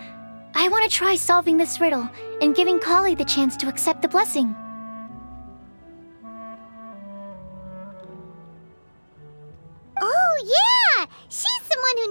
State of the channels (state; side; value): inverted; both; correlation -1.00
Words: I want to try solving this riddle and giving Kali the chance to accept the blessing. Oh, yeah! She's someone who